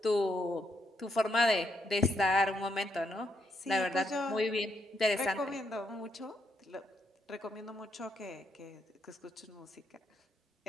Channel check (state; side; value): normal; both; correlation 0.77